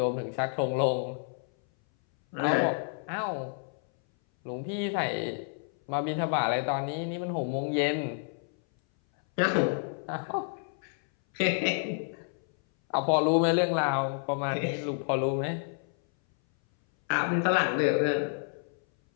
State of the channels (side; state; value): right; silent; 58 dB below the other